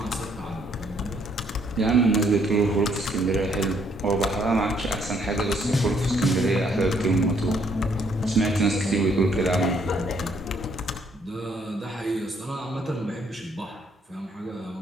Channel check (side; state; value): both; normal; correlation 0.68